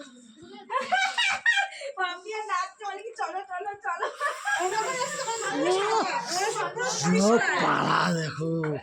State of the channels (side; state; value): both; identical; correlation 1.00